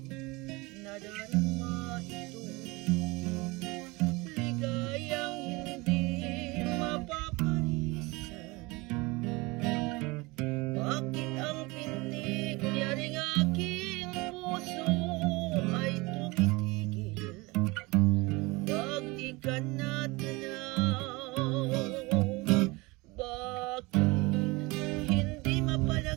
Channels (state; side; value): quieter; left; 24.1 dB